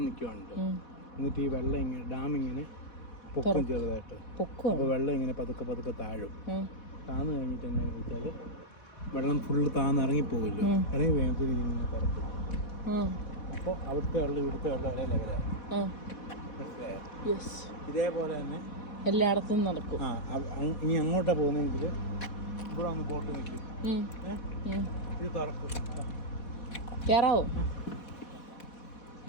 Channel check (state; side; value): late; right; 4.1 ms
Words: നിൽക്കുവാണ്ട്. എന്നിട്ട് ഈ വെള്ളം ഇങ്ങനെ ഡാം ഇങ്ങനെ പൊക്കും ചെറുതായിട്ട്. അപ്പോൾ വെള്ളം ഇങ്ങനെ പതുക്കെ പതുക്കെ താഴും. താന്ന് കഴിഞ്ഞിട്ട് എന്നാന്ന് വെച്ചാൽ വെള്ളം ഫുള്ള് താന്ന് ഇറങ്ങിപ്പോകില്ലോ. ഇറങ്ങി വേഗത്തിൽ ഇങ്ങനെ പുറത്തും. അപ്പോൾ അവിടുത്തെ വെള്ളം ഇവിടുത്തെ വെള്ളം ഒരേ ലെവലാകും. മനസ്സിലായോ? ഇതേപോലെ തന്നെ എല്ലായിടത്തും നടക്കും. ഇനി അങ്ങോട്ടാ പോകുന്നെങ്കിൽ ഇവിടെ വന്ന് ബോട്ട് നിൽക്കും. ഇത് തുറക്കും. കേറാവോ?